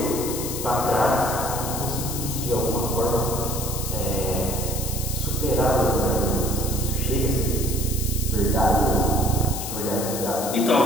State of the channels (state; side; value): noise; left; hiss, 6 dB below the sound